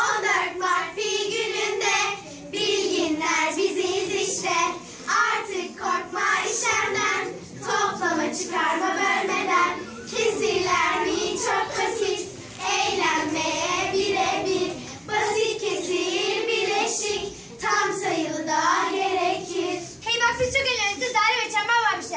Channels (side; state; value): both; identical; correlation 1.00